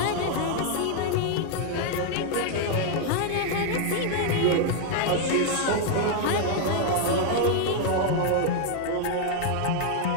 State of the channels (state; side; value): different; both; correlation 0.00